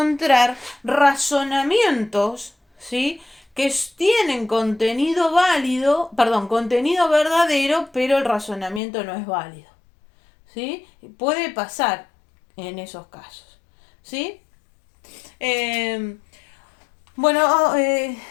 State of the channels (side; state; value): right; drops out; at 8.8 s